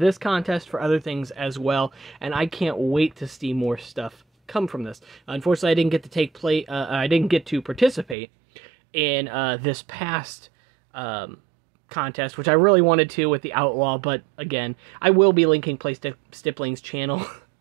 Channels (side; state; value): left; drops out; at 8.2 s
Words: contest, for other things as well, and I can't wait to see more stuff come from this. Unfortunately, I didn't get to participate in this past contest, which I really wanted to with the Outlaw, but again, I will be linking PlayStipling's channel